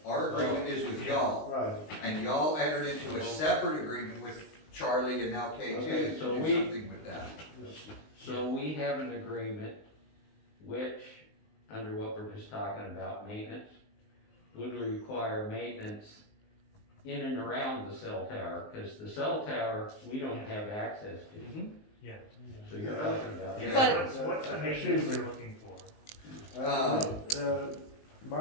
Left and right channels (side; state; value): right; late; 19 ms